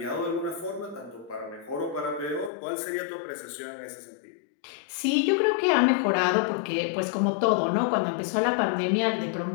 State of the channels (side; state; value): right; drops out; at 2.5 s